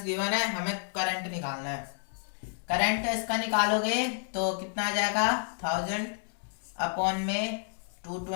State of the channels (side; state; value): right; silent; digital silence